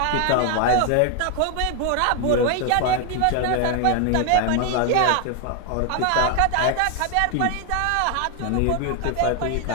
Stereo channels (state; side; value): different; both; correlation 0.01